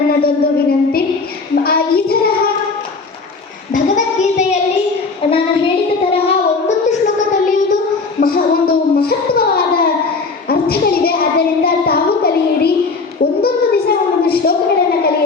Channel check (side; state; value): right; quieter; 4.2 dB